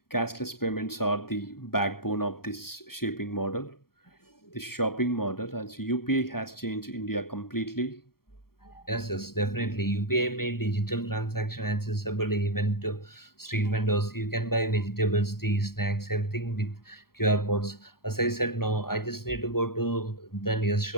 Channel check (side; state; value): right; late; 0.93 ms